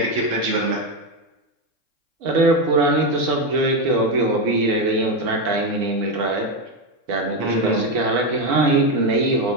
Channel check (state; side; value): late; left; 3.7 ms